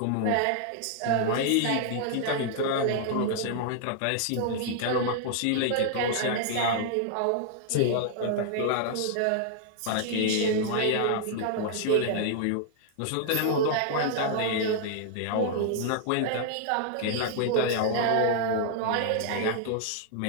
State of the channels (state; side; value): different; both; correlation -0.01